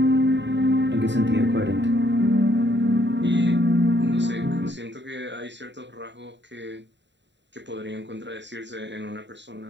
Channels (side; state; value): left; late; 0.52 ms